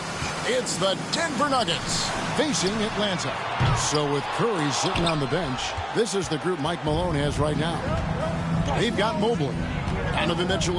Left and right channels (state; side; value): identical; both; correlation 1.00